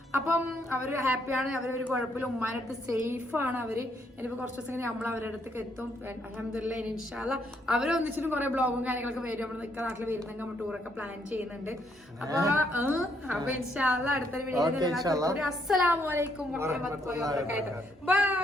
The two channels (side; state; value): both; normal; correlation 0.73